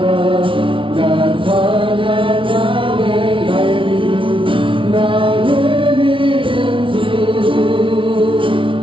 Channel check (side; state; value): left; late; 0.25 ms